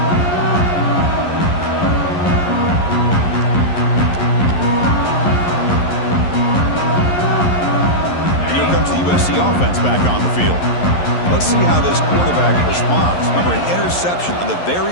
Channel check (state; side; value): late; right; 11 ms